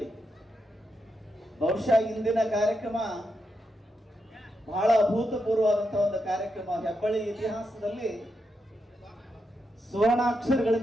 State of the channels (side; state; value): both; normal; correlation 0.84